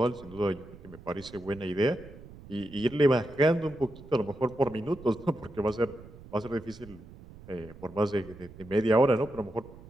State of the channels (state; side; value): noise; right; rumble, 18 dB below the sound